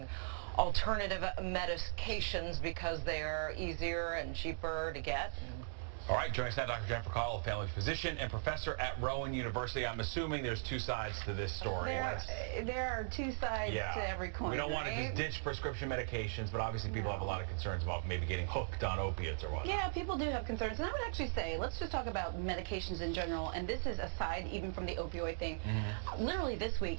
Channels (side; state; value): left; silent; digital silence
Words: alternative medications because they are easier and cheaper to get. All right, joining us now, Dr. Jennifer Caudle, family physician and professor at Rowan University. I'm assuming there's two sides to this story. There are two sides to every coin. We don't want to just ditch prescription medications, but obviously people have a lot of concerns about maybe getting hooked on opiates or whatnot. Yeah, people do have concerns. And I would actually say, let's just talk about medications in general. And this is aside even from the opioid thing. Literally this week,